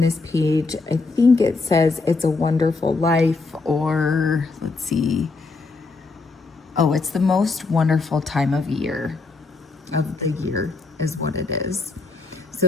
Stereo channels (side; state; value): right; quieter; 3.8 dB